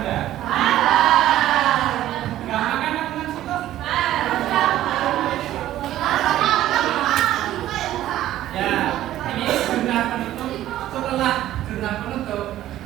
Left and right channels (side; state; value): left; quieter; 13.5 dB